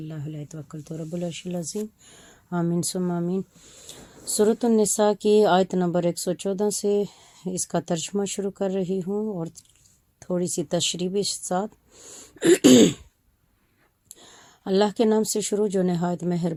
هو علیہ توکلت رب العرش العظیم آمین ثم آمین۔ سورۃ النساء کی آیت نمبر 114 سے اس کا ترجمہ شروع کر رہی ہوں اور تھوڑی سی تشریح بھی ساتھ۔ اللہ کے نام سے شروع جو نہایت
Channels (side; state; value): both; identical; correlation 1.00